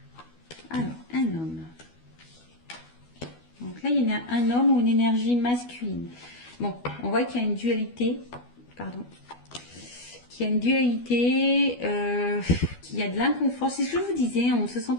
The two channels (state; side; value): late; right; 12 ms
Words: Alors, un homme. Donc là, il y a un homme ou une énergie masculine. Bon, on voit qu'il y a une dualité. Pardon. Qu'il y a une dualité, qu'il y a de l'inconfort. C'est ce que je vous disais, on ne se sent